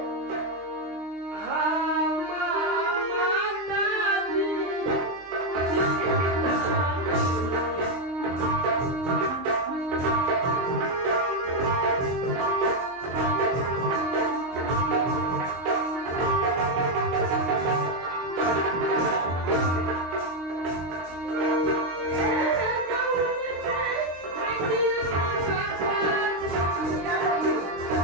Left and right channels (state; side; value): late; left; 23 ms